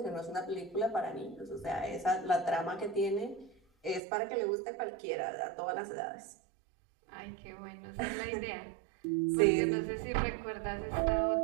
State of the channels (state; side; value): drops out; left; at 4.0 s